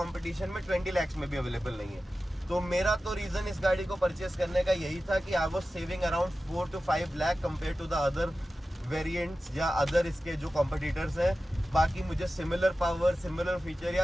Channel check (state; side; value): normal; both; correlation 0.94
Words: में 20 लाख में भी अवेलेबल नहीं है। तो मेरा तो रीज़न इस गाड़ी को परचेस करने का यही था कि I was saving around 4 to 5 lakh compare to the other variants या अदर इसके जो कॉम्पिटिटर्स हैं। बाकी मुझे सिमिलर पावर, सिमिलर फीचर